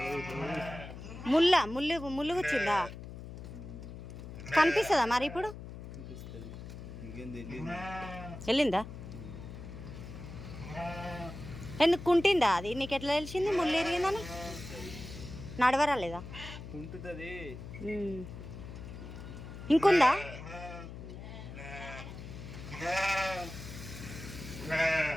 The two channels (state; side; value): noise; left; hum, 11 dB below the sound